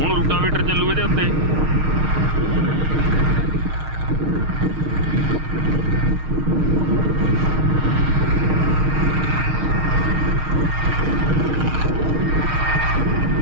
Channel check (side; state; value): left; late; 6.5 ms